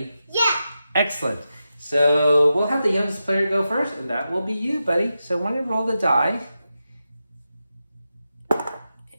Yeah. Excellent. So we'll have the youngest player go first, and that will be you, buddy. So when you roll the die,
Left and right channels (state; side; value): inverted; both; correlation -0.90